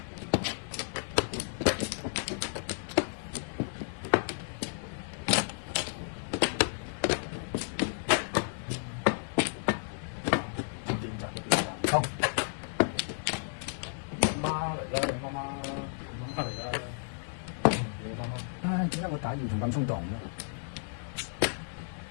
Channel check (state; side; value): silent; right; 56 dB below the other